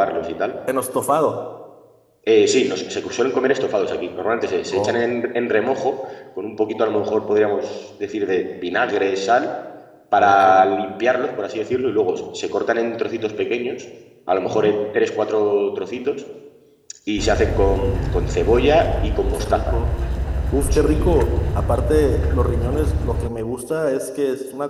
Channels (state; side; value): identical; both; correlation 1.00